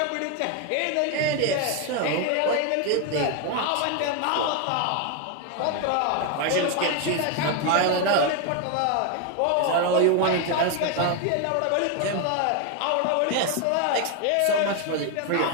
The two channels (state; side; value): different; both; correlation 0.01